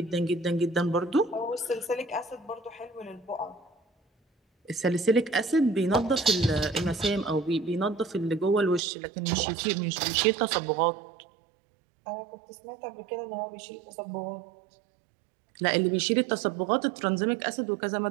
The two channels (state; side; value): drops out; left; at 8.8 s